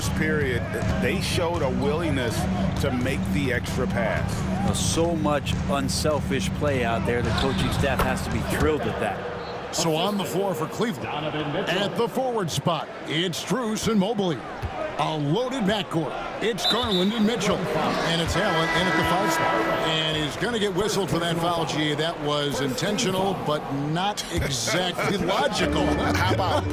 period, they showed a willingness to make the extra pass. So much unselfish play out there. The coaching staff has to be thrilled with that. So on the floor for Cleveland, at the forward spot, it's Strus and Mobley. A loaded backcourt. It's Garland and Mitchell. And it's Allen in at the 5 spot. And he's going to get whistled for that foul, G. That was intentional, but not exactly logical. How about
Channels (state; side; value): identical; both; correlation 1.00